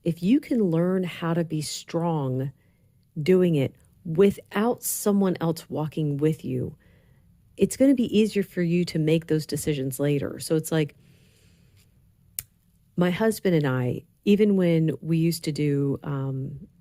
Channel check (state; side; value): identical; both; correlation 1.00